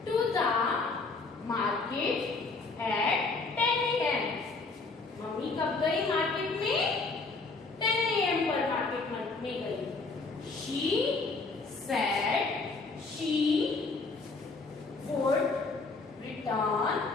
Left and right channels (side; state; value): right; quieter; 3.9 dB